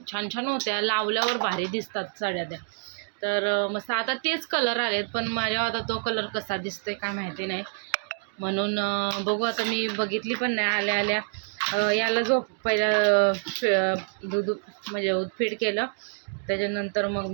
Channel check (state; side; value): silent; left; 60 dB below the other